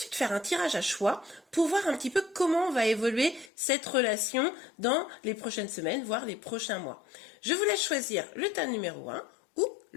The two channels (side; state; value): right; drops out; at 3.5 s